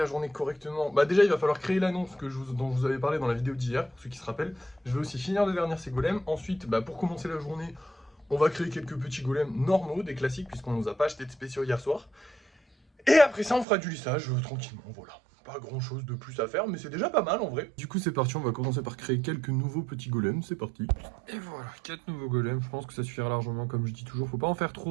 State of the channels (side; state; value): left; drops out; at 13.7 s